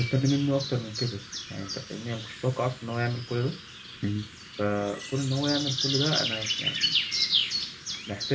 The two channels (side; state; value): both; identical; correlation 1.00